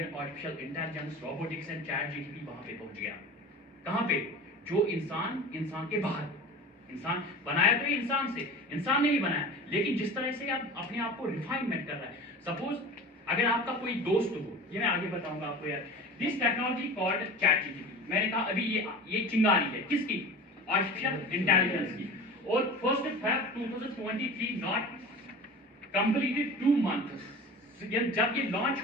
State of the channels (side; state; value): both; normal; correlation 0.35